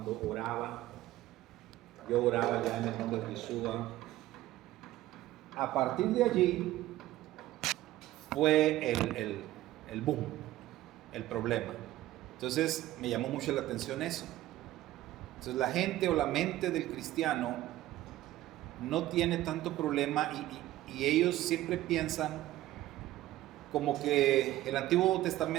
oraba, yo oraba ya en el nombre de Yeshua. A partir de allí fue el boom, el problema. Entonces me llamó mucho la atención eso. Entonces la gente o la mente del cristiano no tiene tanto problema y ellos siempre piensan como que el Antiguo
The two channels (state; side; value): quieter; left; 15.3 dB